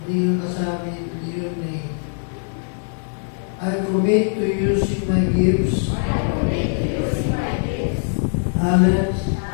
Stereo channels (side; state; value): right; silent; digital silence